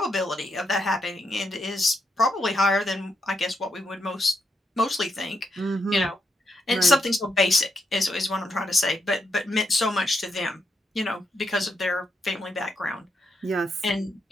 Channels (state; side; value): normal; both; correlation 0.80